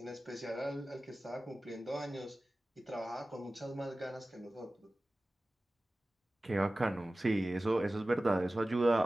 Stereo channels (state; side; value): normal; both; correlation 0.96